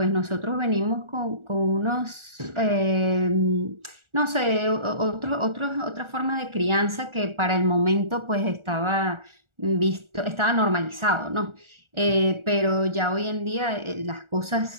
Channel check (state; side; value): late; left; 1.4 ms